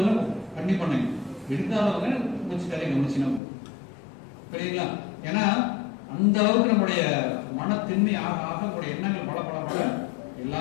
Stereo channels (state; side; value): drops out; right; at 3.4 s